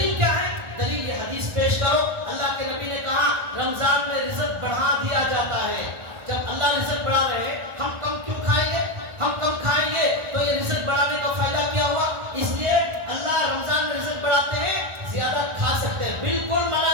کیا ہے؟ دلیل یہ حدیث پیش کرو. اللہ کے نبی نے کہا رمضان میں رزق بڑھا دیا جاتا ہے. جب اللہ رزق بڑھا رہے ہیں ہم کم کیوں کھائیں گے؟ ہم کم کھائیں گے تو یہ رزق بڑھانے کا فائدہ کیا ہوا؟ اس لیے اللہ رمضان میں رزق بڑھاتے ہیں, زیادہ کھا سکتے ہیں, بالکل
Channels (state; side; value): late; left; 1.4 ms